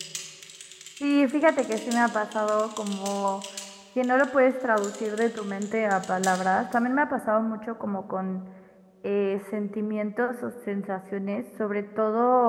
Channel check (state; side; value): identical; both; correlation 1.00